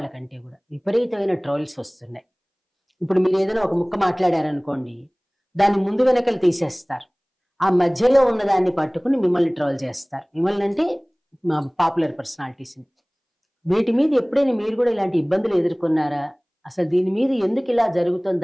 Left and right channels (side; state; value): both; identical; correlation 1.00